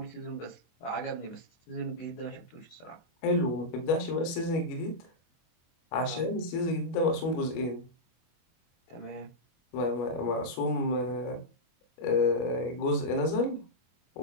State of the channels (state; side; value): late; right; 25 ms